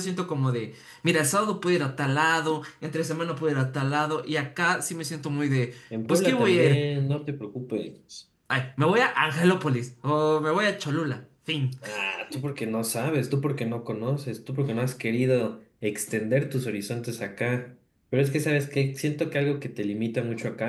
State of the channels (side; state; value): both; identical; correlation 1.00